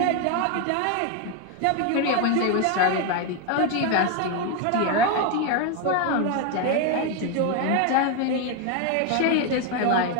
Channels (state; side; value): different; both; correlation 0.01